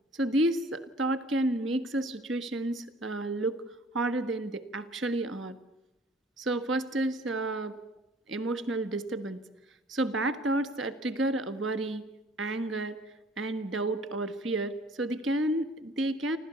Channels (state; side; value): normal; both; correlation 0.53